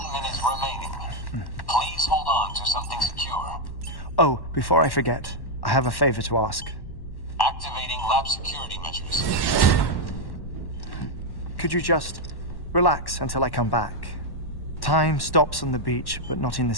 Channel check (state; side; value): late; right; 1.1 ms